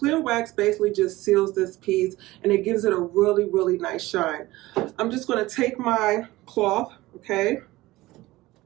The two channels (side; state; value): left; quieter; 18.6 dB